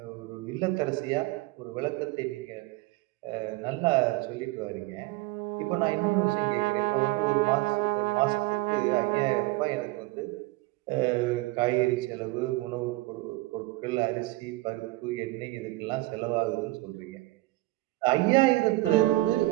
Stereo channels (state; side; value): quieter; left; 20.4 dB